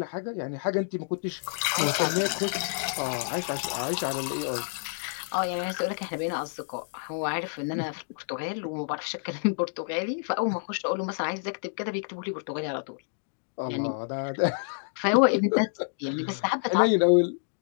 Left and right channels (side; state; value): right; silent; digital silence